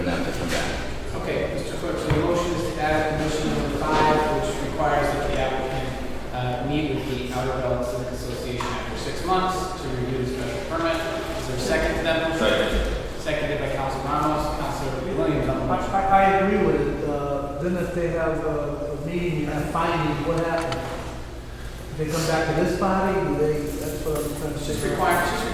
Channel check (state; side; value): identical; both; correlation 1.00